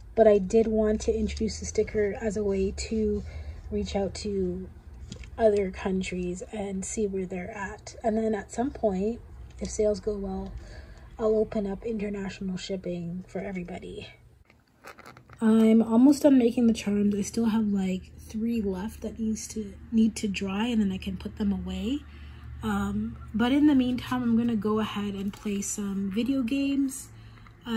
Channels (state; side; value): identical; both; correlation 1.00